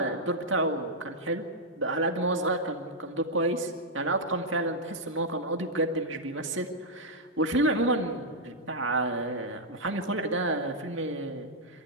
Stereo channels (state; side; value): normal; both; correlation -0.07